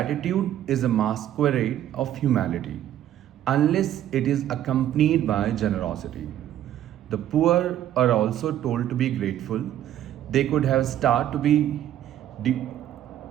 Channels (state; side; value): quieter; left; 11.7 dB